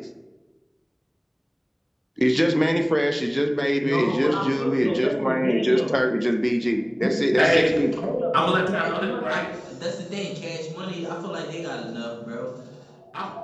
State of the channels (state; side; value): identical; both; correlation 1.00